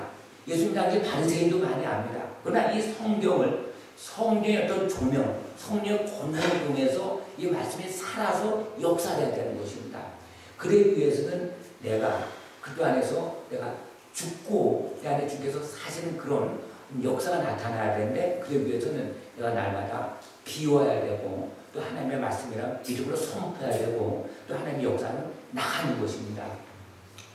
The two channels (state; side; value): identical; both; correlation 1.00